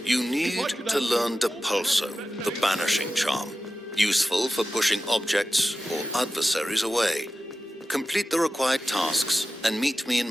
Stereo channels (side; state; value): both; normal; correlation 0.94